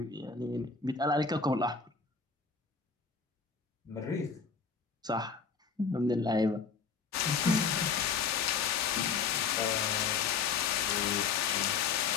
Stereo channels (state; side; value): quieter; right; 5.5 dB